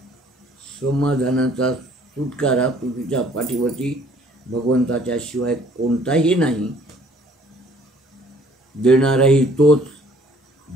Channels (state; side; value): normal; both; correlation 0.58